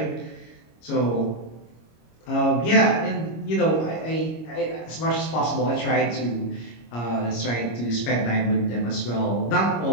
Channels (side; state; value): right; late; 25 ms